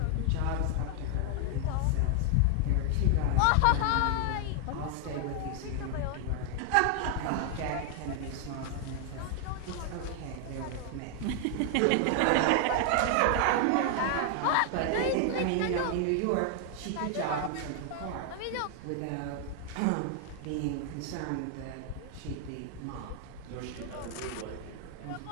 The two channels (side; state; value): both; different; correlation 0.00